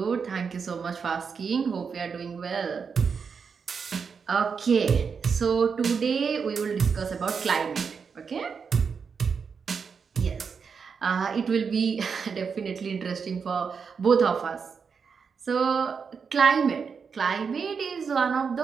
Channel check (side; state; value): left; quieter; 5.9 dB